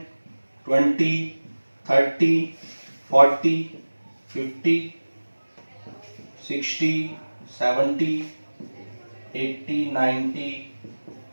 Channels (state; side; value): inverted; both; correlation -1.00